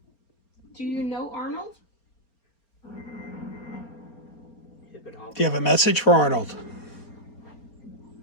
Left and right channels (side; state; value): right; late; 4.3 ms